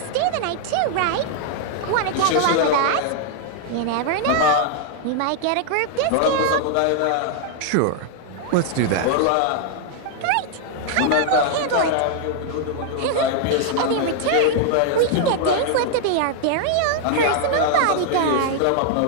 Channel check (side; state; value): both; different; correlation 0.00